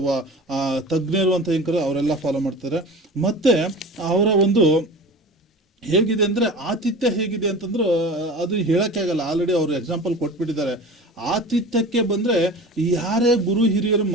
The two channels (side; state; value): both; normal; correlation 0.36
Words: ತಜ್ಞರು ಅಂತ ಹೆಂಗ್ ಅವರೆಲ್ಲ ಫಾಲೋ ಮಾಡ್ತಾರೆ. ಮತ್ತೆ ಅವರ ಒಂದು ಹೇಗಿದೆ ಅಂದ್ರೆ ಆತಿಥ್ಯ ಹೇಗಿದೆ ಅಂತಂದ್ರೆ ಅದು ಹೇಳಕ್ಕೆ ಆಗಲ್ಲ. ಆಲ್ರೆಡಿ ಅವರು ಎಕ್ಸಾಂಪಲ್ ಕೊಟ್ಬಿಟ್ಟಿದ್ದಾರೆ. ಆತಿಥ್ಯಕ್ಕೆ ಬಂದ್ರೆ ಯಾರೇ ಗುರು ಹಿರಿಯರು